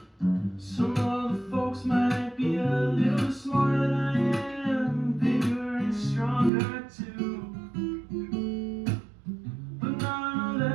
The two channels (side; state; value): left; drops out; at 6.5 s